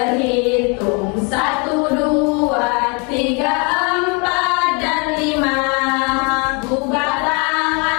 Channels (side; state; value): right; quieter; 32.7 dB